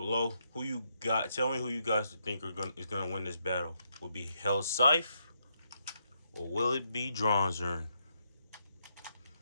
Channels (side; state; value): both; inverted; correlation -0.78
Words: who you got? Tell me who you guys think is gonna win this battle. Will it be Hellsscythe or will it be Dranzer?